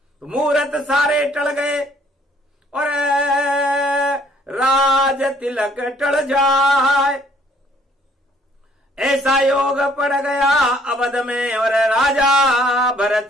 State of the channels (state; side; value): normal; both; correlation 0.62